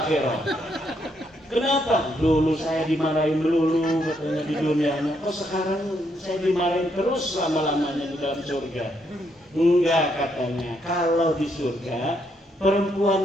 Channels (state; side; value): normal; both; correlation 0.75